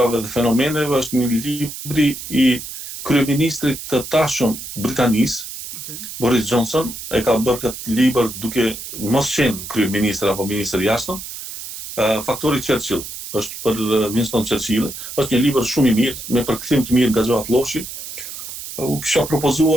dhe fenomeneve, është një libri i kryeministrit të tashëm Britanisë, Boris Johnson, e ka bërë këtë libër duke mos qenë kryeministër apo ministër jashtëm, Faktori Churchill, është për Winston Churchill, është një libër shumë i mirë, me përkthim të mirë nga Gjoat Lloshi. U kisha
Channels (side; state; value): right; noise; hiss, 10 dB below the sound